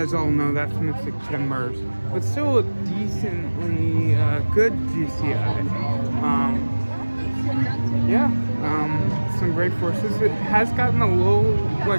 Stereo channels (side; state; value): both; inverted; correlation -1.00